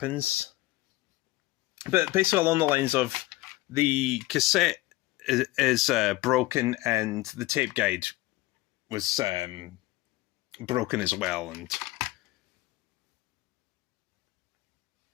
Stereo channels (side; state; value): right; quieter; 18.9 dB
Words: But basically along the lines of the cassette is broken, and the tape guide was broken as well. And